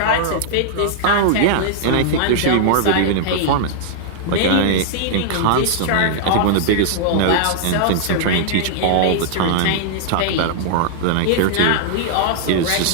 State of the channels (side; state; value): both; different; correlation -0.01